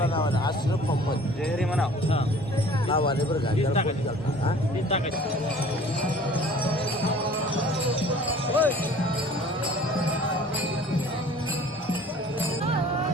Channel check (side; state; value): both; normal; correlation 0.49